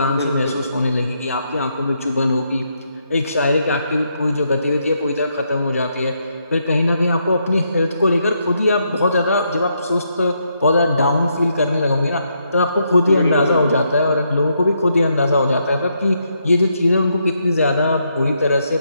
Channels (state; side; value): inverted; both; correlation -0.78